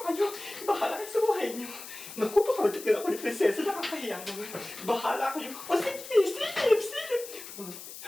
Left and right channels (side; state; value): left; noise; hiss, 13 dB below the sound